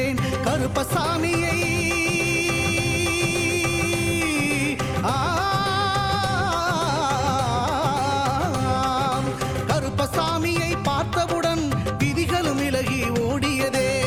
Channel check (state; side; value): identical; both; correlation 1.00